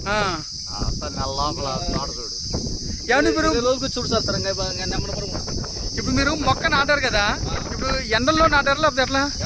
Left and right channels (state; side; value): identical; both; correlation 1.00